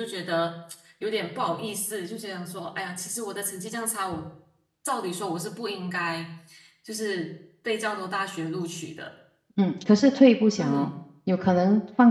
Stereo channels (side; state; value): both; identical; correlation 1.00